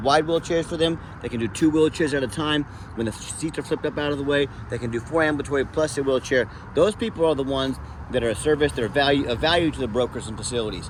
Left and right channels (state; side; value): identical; both; correlation 1.00